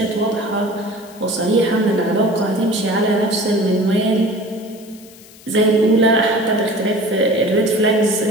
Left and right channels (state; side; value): noise; left; hiss, 23 dB below the sound